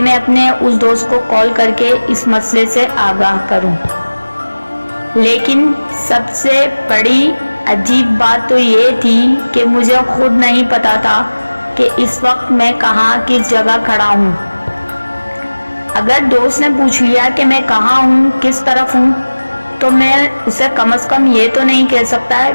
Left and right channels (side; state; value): both; inverted; correlation -1.00